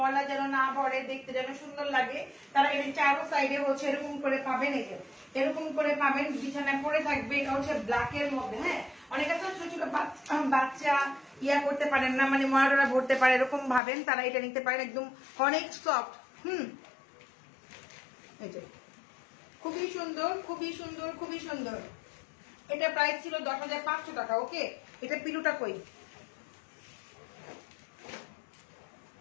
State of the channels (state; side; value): drops out; right; at 13.8 s